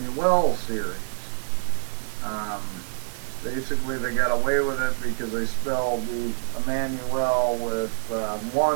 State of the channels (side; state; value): left; silent; 61 dB below the other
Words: series, basically they got away with it because they spelled the Emmanuel with